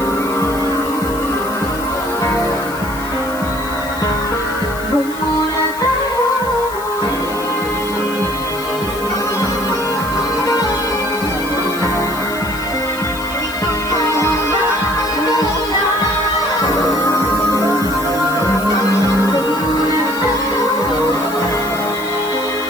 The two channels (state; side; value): noise; left; hiss, 15 dB below the sound